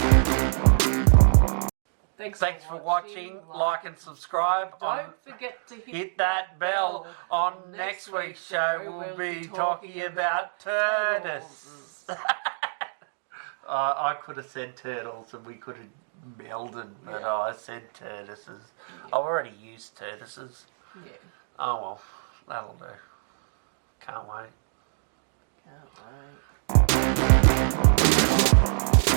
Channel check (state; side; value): silent; left; digital silence